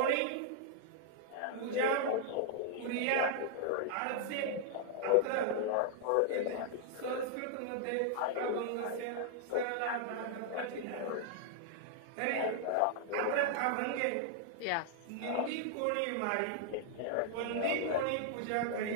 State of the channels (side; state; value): both; different; correlation -0.01